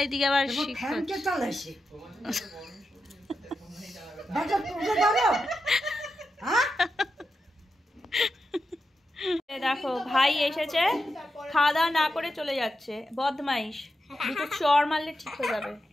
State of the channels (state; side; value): normal; both; correlation 0.88